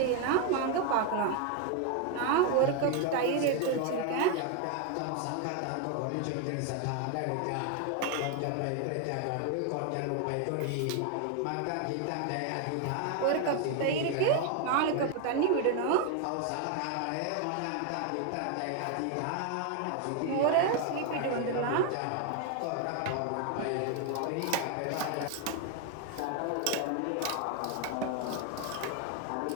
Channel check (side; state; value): both; different; correlation 0.01